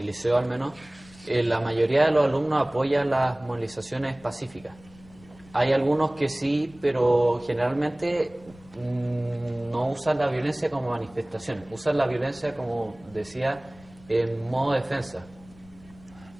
liceo al menos la mayoría de los alumnos apoya las movilizaciones pacíficas. Hay algunos que sí, pero generalmente no usan la violencia como manifestación, usan la violencia, como decía, en modo defensa.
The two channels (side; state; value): left; noise; rumble, 24 dB below the sound